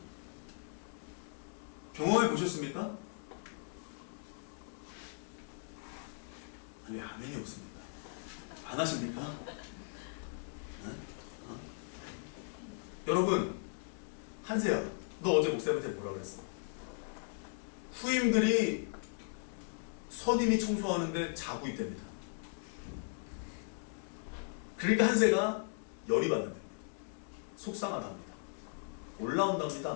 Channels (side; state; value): right; silent; digital silence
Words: 경험해 보셨습니까? 아니, 아멘이 없습니다. 안 하십니까? 여러분, 한세야, 너 어제 목사님한테 뭐라 그랬어? 후임들이 선임이 청소하는데 자고 있답니다. 그러니까 한세가 열이 받는답니다. 속상하답니다.